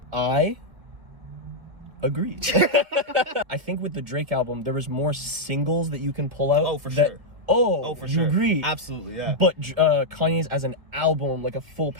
I agree. I think with the Drake album, there was more singles that you can pull out. Oh, for sure. Oh, for you sure. agree? Absolutely, yeah. But Kanye's as an album, like a full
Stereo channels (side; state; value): left; late; 2.1 ms